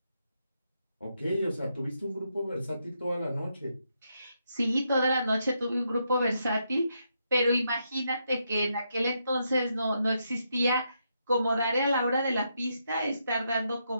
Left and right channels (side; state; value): both; inverted; correlation -0.80